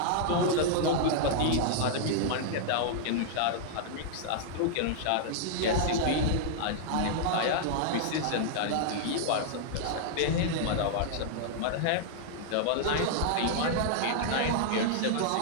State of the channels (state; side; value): different; both; correlation -0.01